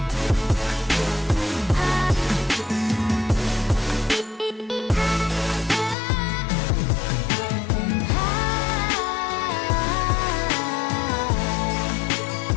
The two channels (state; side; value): drops out; right; at 6.0 s